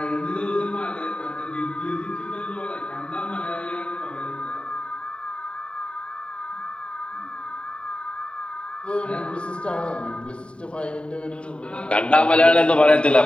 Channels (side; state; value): right; late; 0.055 ms